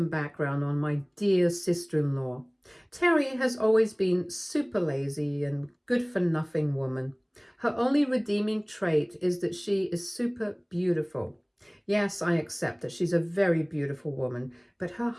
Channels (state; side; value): identical; both; correlation 1.00